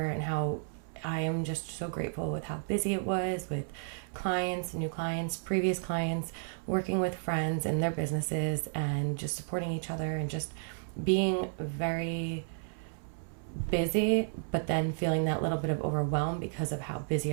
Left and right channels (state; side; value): silent; left; 56 dB below the other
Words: and how I am just so grateful with how busy it was with clients, new clients, previous clients, working with friends and their businesses and just supporting each other and just being very busy, but then feeling that little bit of overwhelm because of how